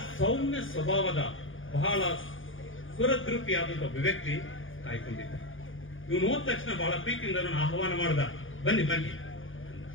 ಸೌಮ್ಯ ಸ್ವಭಾವದ ಬಹಳ ಸುರದ್ರೂಪಿಯಾದಂತ ಒಬ್ಬ ವ್ಯಕ್ತಿ ಕಾಯ್ಕೊಂಡಿದ್ದ. ಇವನು ಹೋದ ತಕ್ಷಣ ಬಹಳ ಪ್ರೀತಿಯಿಂದ ಅವನು ಆಹ್ವಾನ ಮಾಡ್ದ, ಬನ್ನಿ ಬನ್ನಿ.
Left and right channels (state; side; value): late; right; 0.58 ms